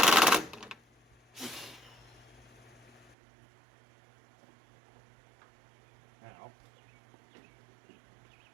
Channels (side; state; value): left; drops out; at 3.2 s